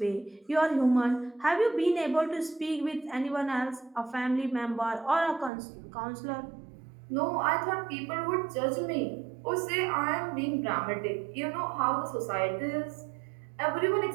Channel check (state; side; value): drops out; left; at 5.5 s